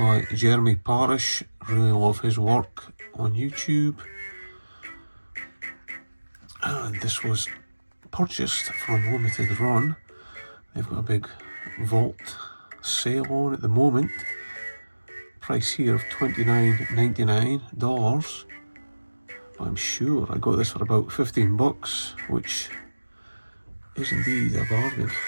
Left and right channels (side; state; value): both; inverted; correlation -1.00